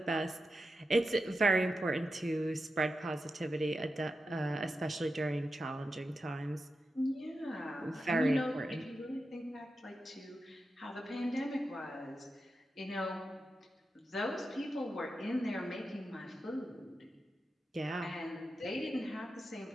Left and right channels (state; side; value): normal; both; correlation 0.89